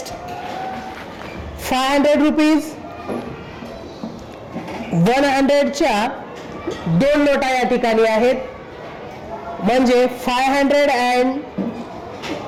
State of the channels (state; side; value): identical; both; correlation 1.00